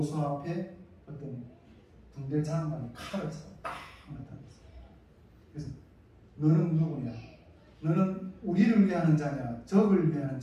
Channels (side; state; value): both; identical; correlation 1.00